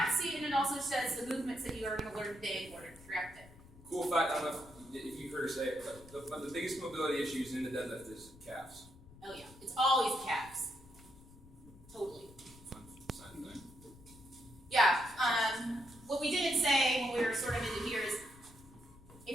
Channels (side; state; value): left; noise; rumble, 21 dB below the sound